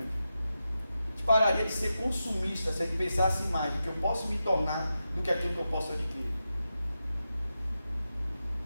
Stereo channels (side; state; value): both; inverted; correlation -0.90